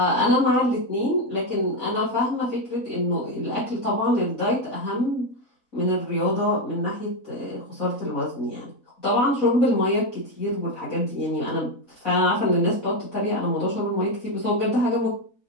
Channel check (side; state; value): right; late; 4.0 ms